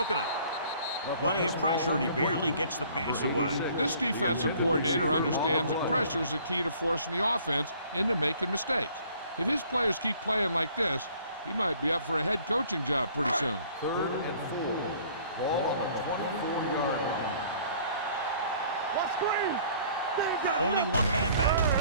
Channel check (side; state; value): both; inverted; correlation -0.55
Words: up. Plenty of pressure, and he barely gets the pass away. This defensive coordinator understands that pressure is the key to forcing the offense into making mistakes. If his players keep playing like this, he might be up for a head coaching job pretty soon. Third and 4. Ball on the 24-yard line. What screen? Only one man back.